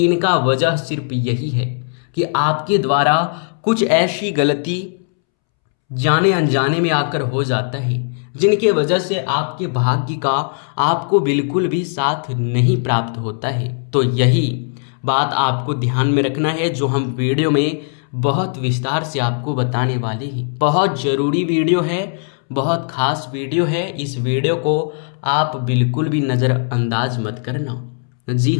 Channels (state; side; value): silent; right; 67 dB below the other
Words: इनका वजह सिर्फ यही है कि आपके द्वारा कुछ ऐसी गलती जाने अनजाने में आकर हो जाता है जिनके वजह से आपके भाग्य का आपको बिल्कुल भी साथ नहीं प्राप्त होता है। तो यही बात आपको ध्यान में रखना है, जो हम वीडियो में बहुत विस्तार से आपको बताने वाले हैं। बहुत ज़रूरी वीडियो है, बहुत खास वीडियो है। इस वीडियो को आप बिल्कुल भी नज़रअंदाज मत करना। जी